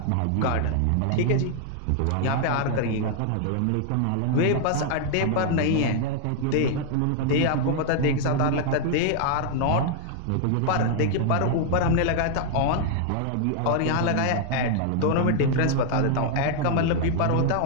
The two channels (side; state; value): both; different; correlation 0.00